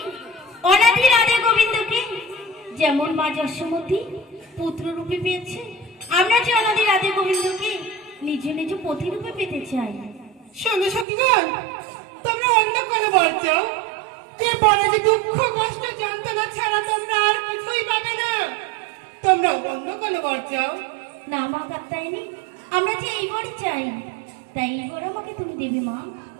অনাদি রাধে গোবিন্দকে যেমন মা যশোমতী পুত্র রূপে পেয়েছে, আমরা যে অনাদি রাধে গোবিন্দকে নিজ নিজ পতি রূপে পেতে চাই। শোনো সখীগণ, তোমরা অন্য কোনো বর চাও, যে বরে যে দুঃখ কষ্ট যন্ত্রণা ছাড়া তোমরা আর কিছুই পাবে না। তোমরা অন্য কোনো বর চাও। না মা কাত্তায়নী, আমরা যে এই বর চাই, তাই এই বর আমাকে তুমি দেবে মা।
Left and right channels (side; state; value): left; drops out; at 11.1 s